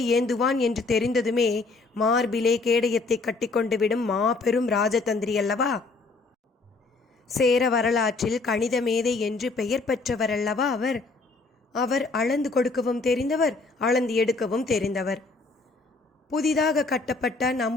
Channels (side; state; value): right; quieter; 3.7 dB